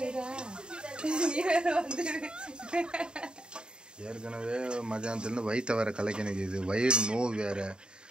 ஏற்கனவே மதியானத்துலேருந்து வயிற்ற வேற கலக்கினது, இது வயிறு நோய் வேற.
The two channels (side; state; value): left; late; 0.049 ms